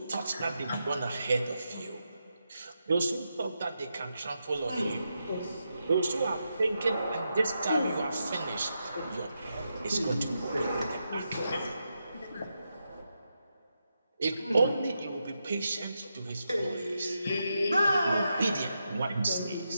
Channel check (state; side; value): inverted; both; correlation -0.86